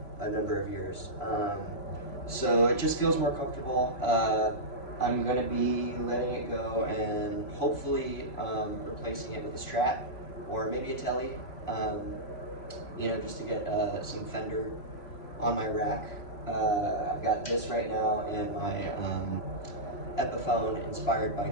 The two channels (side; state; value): right; late; 3.0 ms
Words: a number of years. So it just feels more comfortable. I'm going to be letting it go and hopefully replacing it with a Strat or maybe a Tele, you know, just to get some Fender on my rack. I've got this right now and my Epiphone inspired by